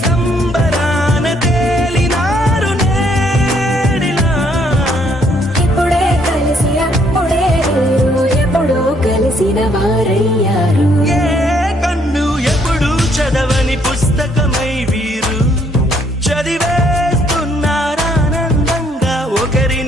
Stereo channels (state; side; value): normal; both; correlation 0.68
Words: సంబరాన తేలినారు నేడిలా ఇప్పుడే కలిసి అప్పుడే మీరు ఎప్పుడో కలిసిన వారయ్యారు ఏ కన్ను ఎప్పుడు చదవని పుస్తకమై వీరు చదివేస్తున్నారానందంగా